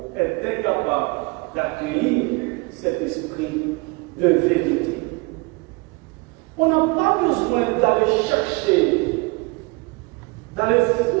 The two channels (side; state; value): left; quieter; 26.6 dB